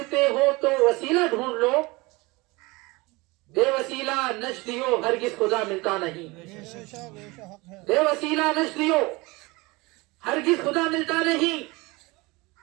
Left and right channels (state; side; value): quieter; left; 23.7 dB